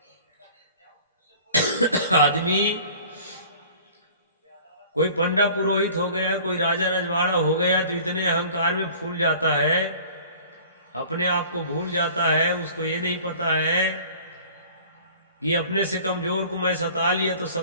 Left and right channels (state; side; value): inverted; both; correlation -0.47